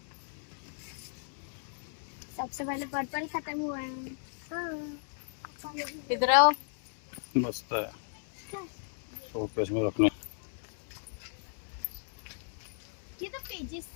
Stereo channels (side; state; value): right; silent; digital silence